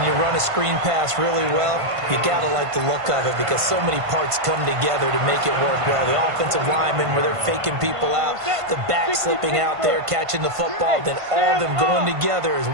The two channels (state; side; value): late; left; 1.5 ms